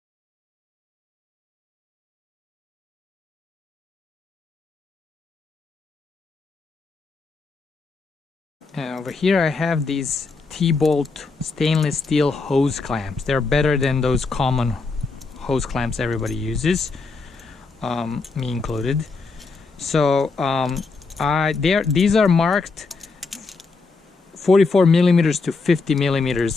And over here I have these T-bolt stainless steel hose clamps. They're better than those common hose clamps everybody uses, me included. So these are marked 44 millimeters to 50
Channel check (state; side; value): quieter; right; 4.1 dB